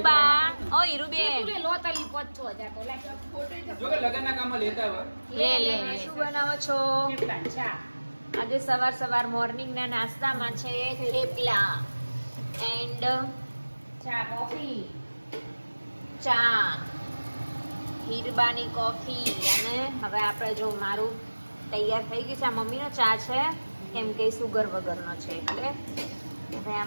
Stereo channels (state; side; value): inverted; both; correlation -1.00